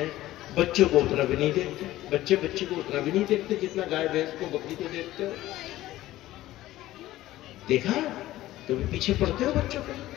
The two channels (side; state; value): right; quieter; 15.5 dB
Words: بچوں کو اتنا بھی نہیں دیکھتے، بچے کو اتنا بھی نہیں دیکھتے جتنا گائے بھینس کو بکری کو دیکھتے ہو۔ دیکھا؟ کبھی پیچھے پڑتے ہو بچوں کو،